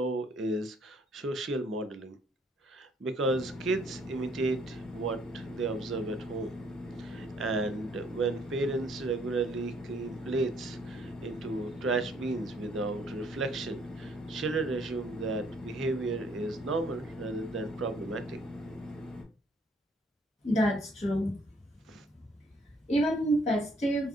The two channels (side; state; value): both; normal; correlation 0.64